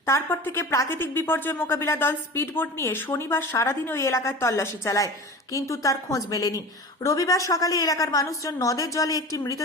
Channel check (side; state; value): both; normal; correlation 0.34